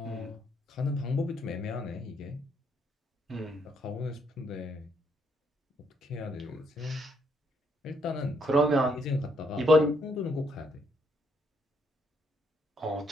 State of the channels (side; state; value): both; normal; correlation 0.73